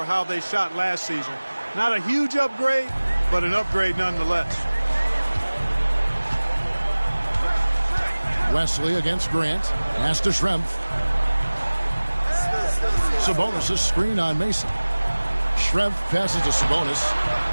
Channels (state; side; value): inverted; both; correlation -1.00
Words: how they shot last season. Not a huge upgrade, but an upgrade nonetheless. Wesley against Grant. Pass to Schrempf. Sabonis' screen on Mason. Schrempf passes to Sabonis.